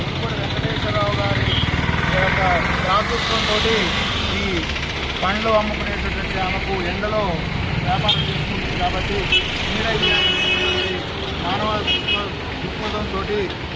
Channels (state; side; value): identical; both; correlation 1.00